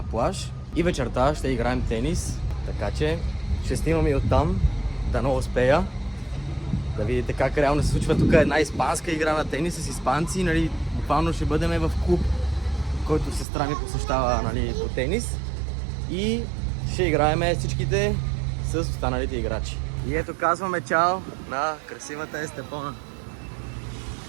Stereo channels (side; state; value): left; drops out; at 13.5 s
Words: плаж. И вечерта ще играем тенис, така че ще снимам и оттам, да не успея. Да видите как реално се случва тук една испанска игра на тенис с испанци. Буквално ще бъдем в клуб, който сестра ми посещава по тенис. И ще играем всичките с останалите играчи. И ето казваме чао на красивата Естепона.